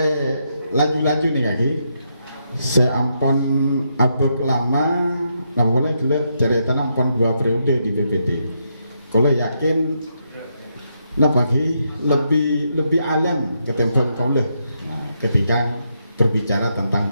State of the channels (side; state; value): both; inverted; correlation -0.80